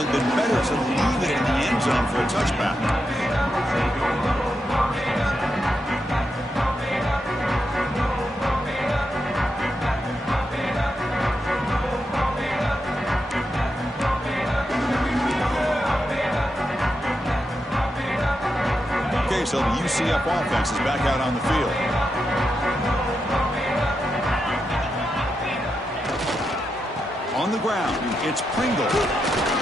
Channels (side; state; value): both; normal; correlation 0.86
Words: have been better to leave it in the end zone for a touchback. Okay, so the UCF offense is back out on the field. On the ground, it's Pringle.